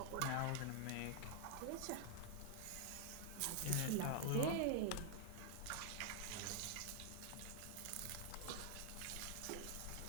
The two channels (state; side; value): different; both; correlation 0.00